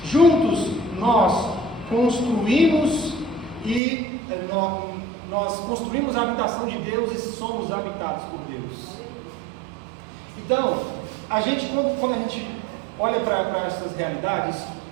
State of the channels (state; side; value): drops out; left; at 3.8 s